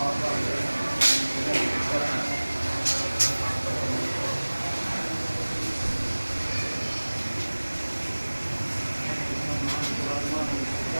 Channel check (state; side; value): inverted; both; correlation -1.00